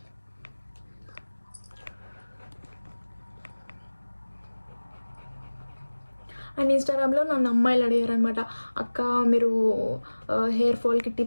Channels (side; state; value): both; inverted; correlation -1.00